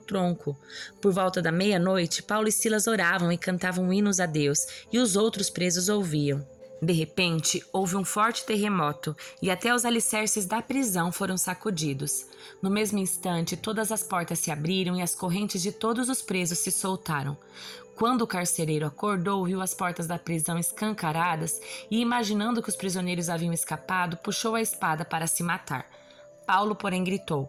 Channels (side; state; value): both; identical; correlation 1.00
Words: Por volta da meia-noite, Paulo e Silas oravam e cantavam hinos a Deus, e os outros presos ouviam. De repente, houve um forte terremoto e até os alicerces da prisão foram sacudidos. No mesmo instante, todas as portas se abriram e as correntes de todos os presos se soltaram. Quando o carcereiro acordou, viu as portas da prisão escancaradas e, imaginando que os prisioneiros haviam escapado, puxou a espada para se matar. Paulo, porém,